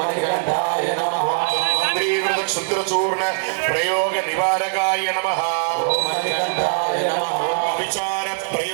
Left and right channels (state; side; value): silent; left; digital silence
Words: మణికంఠాయ నమః. మంత్రీకృత క్షుద్రచూర్ణ ప్రయోగ నివారకాయ నమః. ఓం మణికంఠాయ నమః. విచార